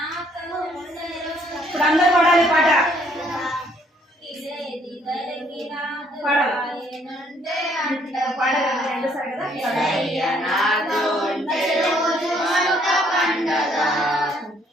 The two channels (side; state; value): both; normal; correlation 0.65